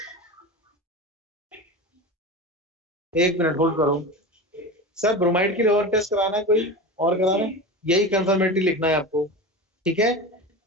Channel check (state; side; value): normal; both; correlation 0.27